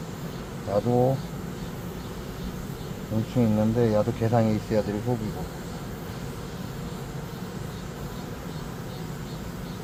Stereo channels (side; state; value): both; identical; correlation 1.00